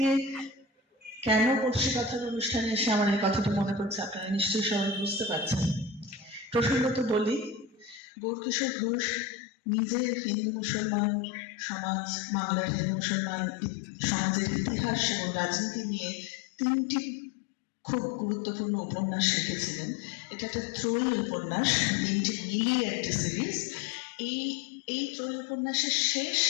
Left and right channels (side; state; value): right; drops out; at 8.0 s